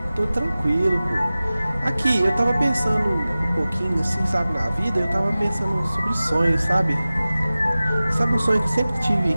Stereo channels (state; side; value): inverted; both; correlation -0.97